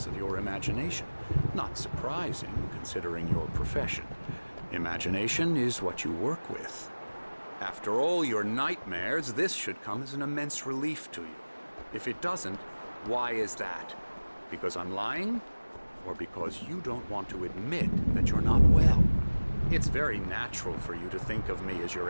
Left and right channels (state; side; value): inverted; both; correlation -1.00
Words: of your imagination. Not surprising, considering your profession. Imagination is what you work with. After all your nightmares, this should come as an immense relief to you. If it doesn't, why is that? Because I'm lying? Or because you don't want to admit that you're not well? It's very natural for you to think of me as your